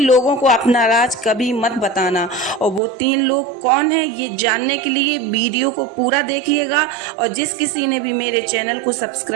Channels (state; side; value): drops out; left; at 2.8 s